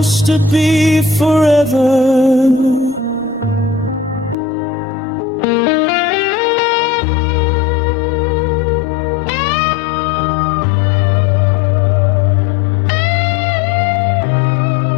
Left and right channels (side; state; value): right; drops out; at 4.4 s